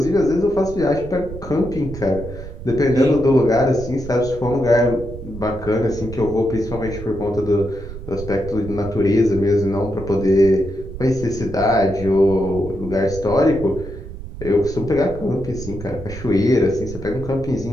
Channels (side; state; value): right; noise; rumble, 11 dB below the sound